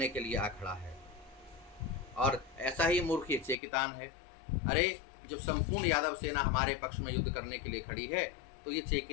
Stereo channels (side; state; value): right; drops out; at 3.6 s